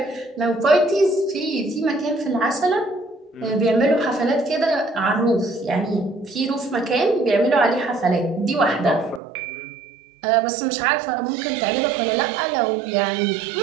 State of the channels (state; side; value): drops out; left; at 9.2 s